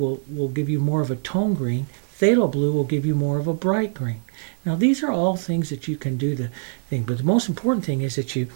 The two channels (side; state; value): left; silent; 60 dB below the other